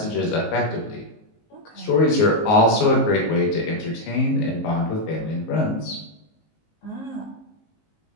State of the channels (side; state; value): right; late; 19 ms